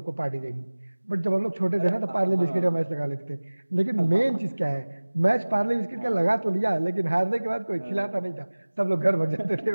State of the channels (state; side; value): inverted; both; correlation -1.00